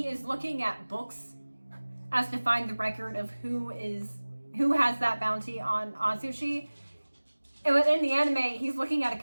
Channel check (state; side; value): inverted; both; correlation -1.00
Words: is looking at books as to find the record of who has that bounty on Atsushi. And within the anime, he's looking at a